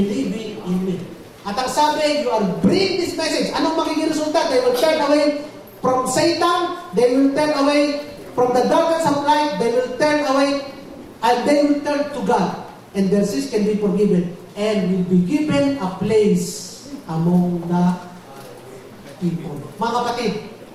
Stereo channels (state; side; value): identical; both; correlation 1.00